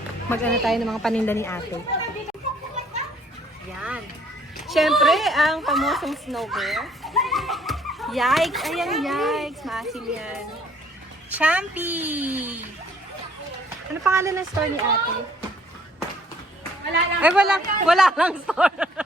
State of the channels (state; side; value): normal; both; correlation 0.61